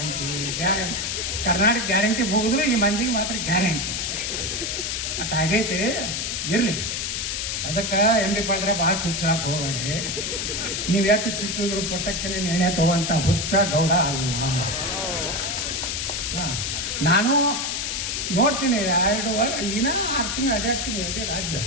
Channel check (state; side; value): noise; left; hiss, 2 dB below the sound